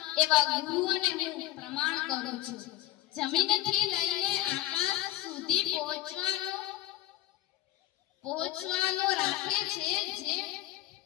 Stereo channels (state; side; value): quieter; right; 14.7 dB